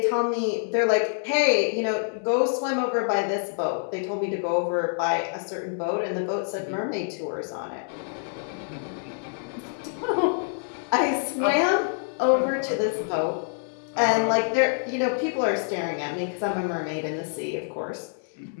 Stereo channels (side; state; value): right; silent; 61 dB below the other